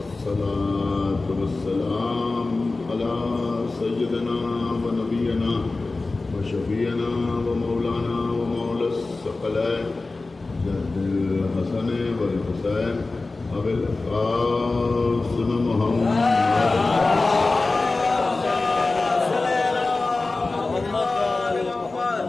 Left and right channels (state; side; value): quieter; right; 3.4 dB